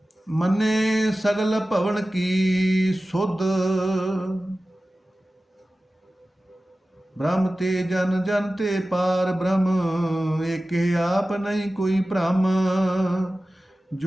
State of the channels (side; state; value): both; normal; correlation 0.95